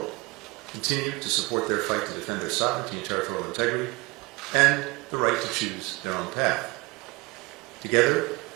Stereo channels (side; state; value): left; quieter; 24.8 dB